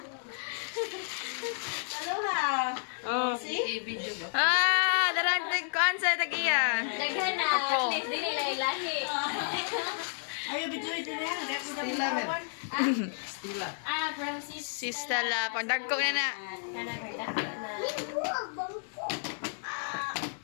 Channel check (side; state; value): right; silent; digital silence